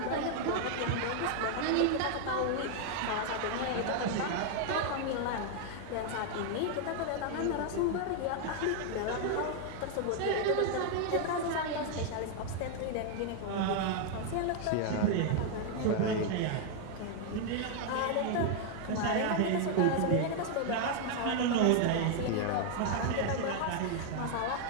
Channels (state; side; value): different; both; correlation 0.00